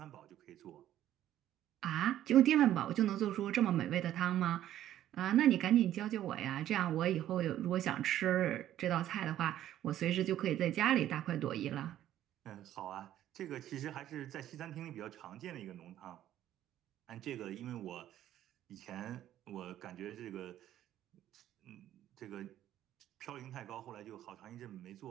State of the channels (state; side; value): quieter; left; 12.3 dB